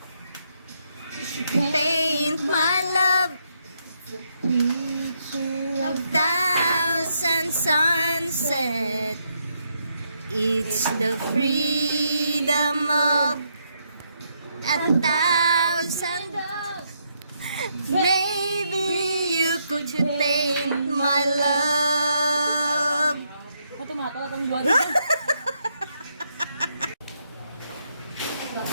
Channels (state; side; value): inverted; both; correlation -0.77